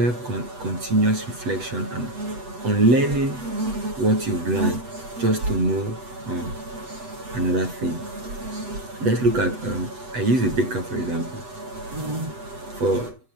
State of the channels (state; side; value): late; left; 8.0 ms